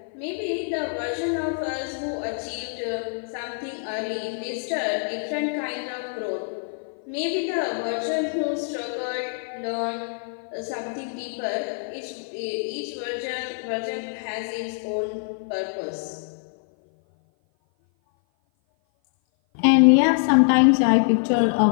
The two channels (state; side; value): silent; right; 56 dB below the other